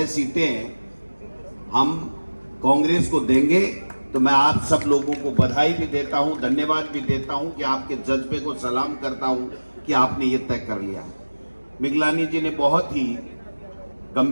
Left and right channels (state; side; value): inverted; both; correlation -1.00